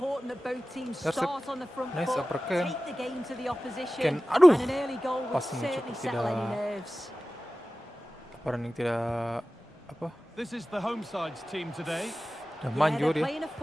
that both teams start on the front foot, take the game to the opposition, and an early goal will certainly settle any nerves. This is the home side's team today. Yeah, they're playing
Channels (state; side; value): normal; both; correlation 0.96